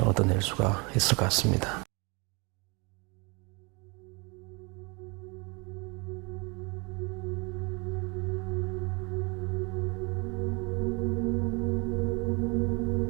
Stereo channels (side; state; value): left; quieter; 29.3 dB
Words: 얻어낼 수가 있을 것 같습니다.